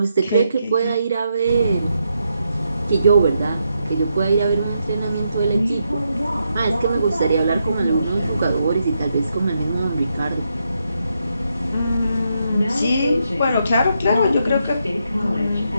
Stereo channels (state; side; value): inverted; both; correlation -0.81